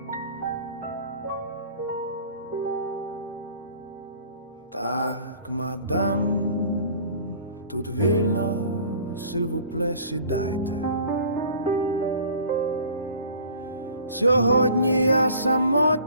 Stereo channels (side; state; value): both; inverted; correlation -0.48